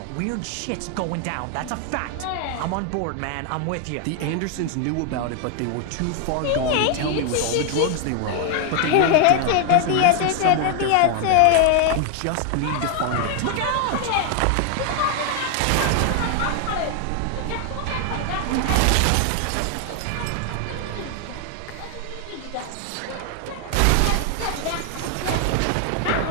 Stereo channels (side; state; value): both; different; correlation 0.00